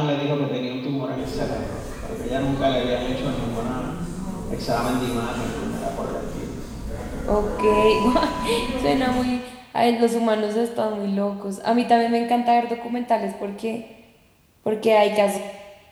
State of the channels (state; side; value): identical; both; correlation 1.00